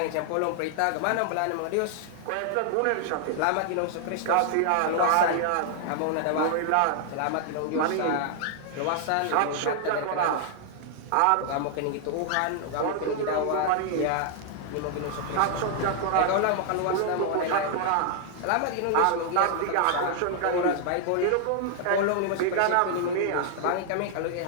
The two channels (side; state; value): both; different; correlation 0.00